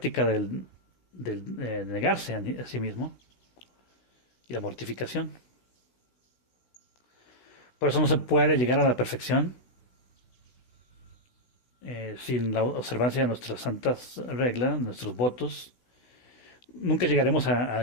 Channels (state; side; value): late; right; 16 ms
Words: del negarse a sí mismo y la mortificación. Por eso no se puede llegar a la perfección sin la observancia de nuestras santas reglas, nuestros votos. Nunca llegaremos